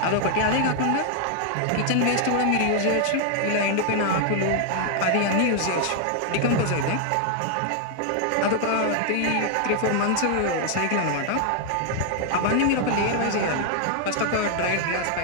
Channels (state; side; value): different; both; correlation 0.00